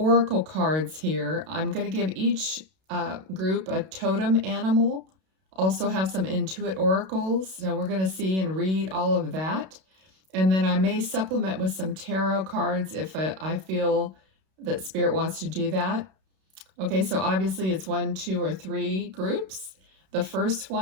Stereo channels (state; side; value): late; left; 32 ms